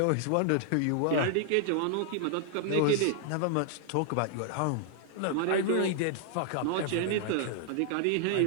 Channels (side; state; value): both; different; correlation 0.00